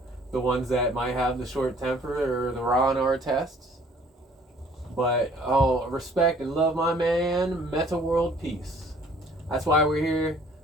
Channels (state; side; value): normal; both; correlation 0.56